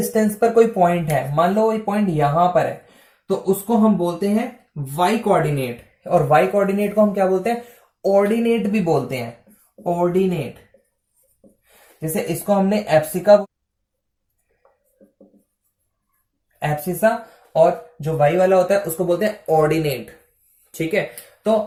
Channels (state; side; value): identical; both; correlation 1.00